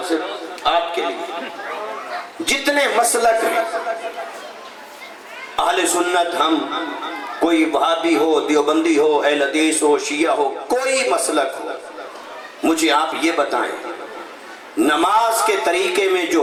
سے آپ کے لیے. جتنے مسلک ہیں اہل سنت، ہم کوئی وہابی ہو، دیوبندی ہو، اہل حدیث ہو، شیعہ ہو، کوئی مسلک ہو، مجھے آپ یہ بتائیں نماز کے طریقے میں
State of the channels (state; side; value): identical; both; correlation 1.00